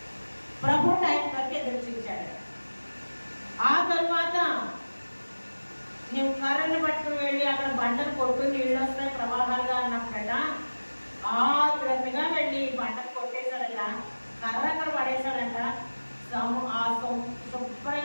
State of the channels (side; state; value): both; inverted; correlation -1.00